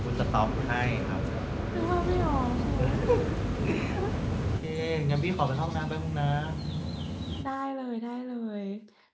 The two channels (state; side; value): identical; both; correlation 1.00